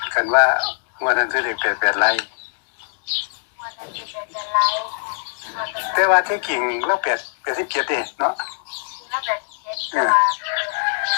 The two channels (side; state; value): right; silent; digital silence